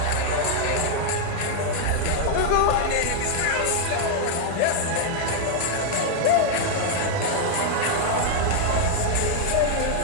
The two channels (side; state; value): both; different; correlation 0.00